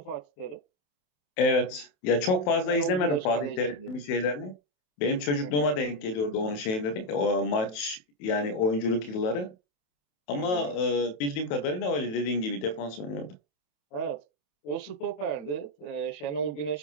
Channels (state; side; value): late; right; 27 ms